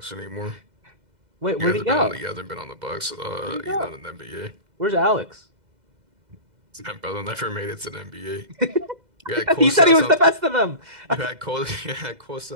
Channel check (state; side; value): late; left; 2.0 ms